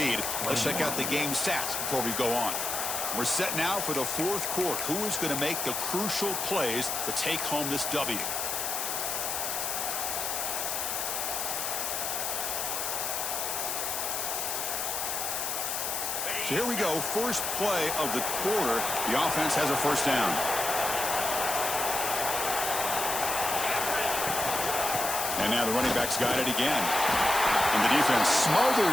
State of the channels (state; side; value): noise; left; hiss, 1 dB below the sound